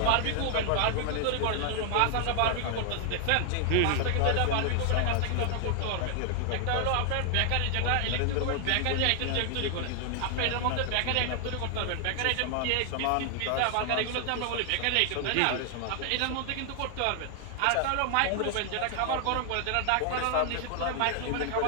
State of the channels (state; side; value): different; both; correlation 0.00